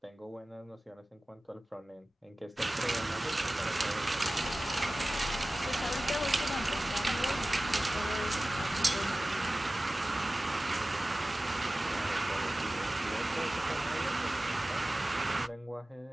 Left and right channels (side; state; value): both; normal; correlation 0.97